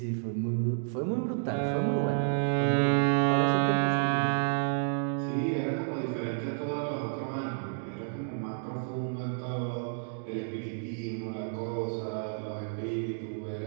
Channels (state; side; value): silent; left; digital silence